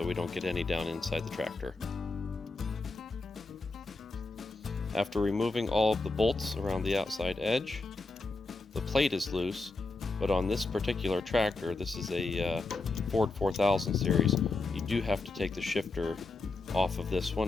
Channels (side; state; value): right; quieter; 3.5 dB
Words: we don't get any down inside the tractor. After removing all of the bolts around the outside edge, the plate is loose, but on this particular tractor, this is a Ford 4000 series, you do have to take the shifter off of this